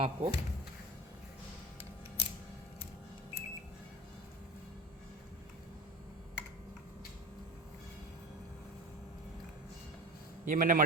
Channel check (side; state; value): both; normal; correlation 0.32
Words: आपको। ये मैंने